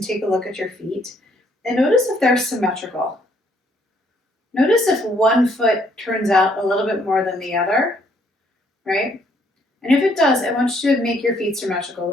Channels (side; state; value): both; normal; correlation 0.68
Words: take a look at your feet. And notice if they're symmetrical. Notice if one foot turns out a little bit more than the other, right? And if it does, I want you to make your feet symmetrical,